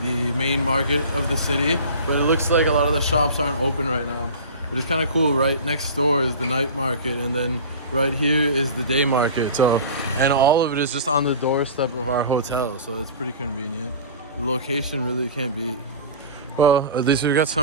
the main market of the city, but it looks like a lot of the shops aren't open right now. But it's kind of cool. Right next door is the night market, and then right here is the day market. So, and all of it is just on the doorstep of our hotel, so it's pretty convenient. The location really can't beat. Well, at least we've got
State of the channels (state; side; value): inverted; both; correlation -0.35